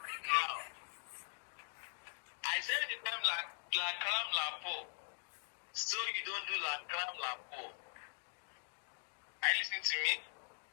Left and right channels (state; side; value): silent; right; digital silence